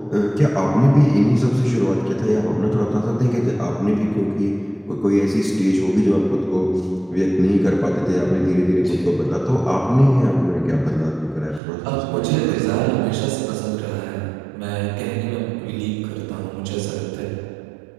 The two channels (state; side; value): drops out; left; at 11.6 s